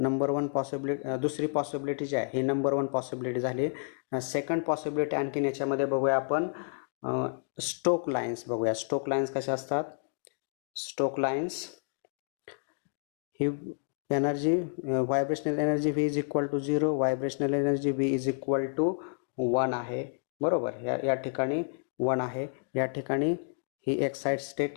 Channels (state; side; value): silent; right; digital silence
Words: 1 पॉसिबिलिटी, दुसरी पॉसिबिलिटी जी आहे ही नंबर 1 पॉसिबिलिटी झाली. सेकंड पॉसिबिलिटी आणखीन याच्यामध्ये बघूया आपण, स्टोक लाईन्स बघूया. स्टोक लाईन्स कशा असतात? स्टोक लाईन्स ही energy, vibrational energy v is equal to 0, vibrational energy v is equal to 1 आहे. बरोबर, या ठिकाणी 1 आहे. या ठिकाणी ही एक्साइट स्टेट